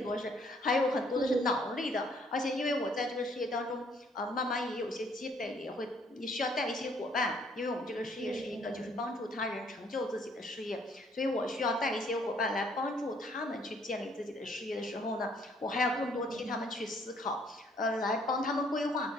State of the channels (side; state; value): both; normal; correlation 0.64